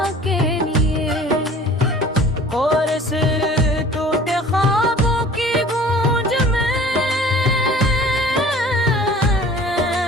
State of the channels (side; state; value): both; normal; correlation 0.47